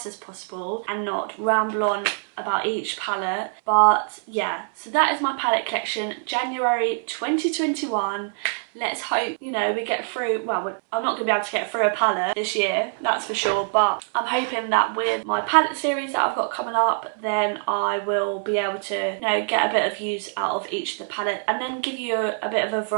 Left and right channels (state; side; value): silent; left; 62 dB below the other